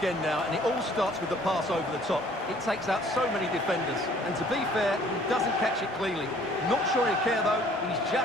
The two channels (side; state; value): both; normal; correlation 0.56